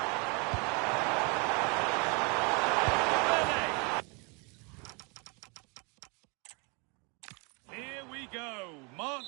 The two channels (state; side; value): quieter; left; 32.1 dB